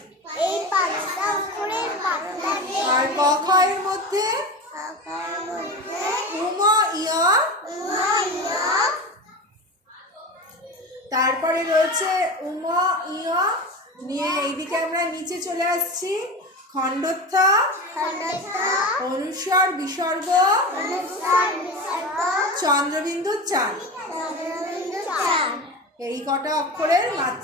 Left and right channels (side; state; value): both; normal; correlation 0.27